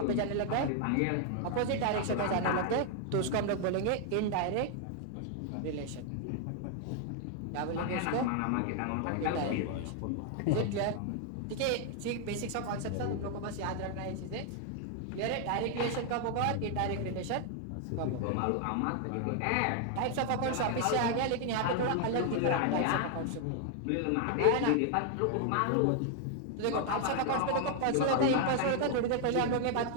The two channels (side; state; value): both; different; correlation 0.00